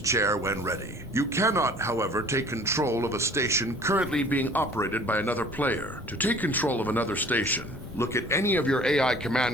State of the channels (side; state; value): both; normal; correlation 0.49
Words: when ready. You cannot, however, take control of a station currently being operated by another player. To take control of another station, look at any of your AI